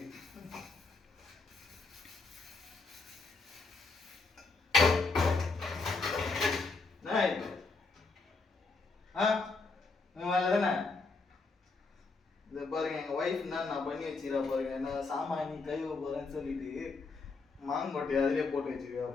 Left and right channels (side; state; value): right; quieter; 4.1 dB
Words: பண்ணி வச்சுக்கிறா பாருங்க. நான் சாமான் நீ கழுவ போறேன்னு சொல்லிட்டு மாங்கொட்டையை அதிலே போட்டு வச்சுக்கிறா